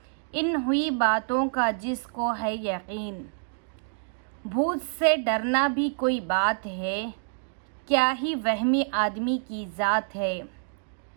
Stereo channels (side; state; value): left; silent; digital silence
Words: ان ہوئی باتوں کا جس کو ہے یقین۔ بھوت سے ڈرنا بھی کوئی بات ہے، کیا ہی وہمی آدمی کی ذات ہے۔